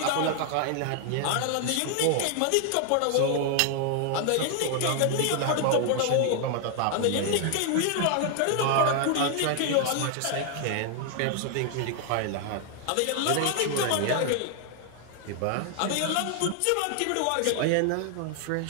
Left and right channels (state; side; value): different; both; correlation 0.00